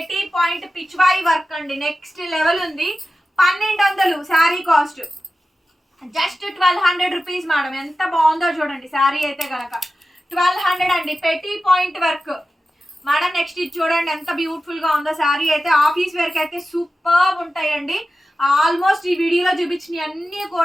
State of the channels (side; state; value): both; normal; correlation 0.93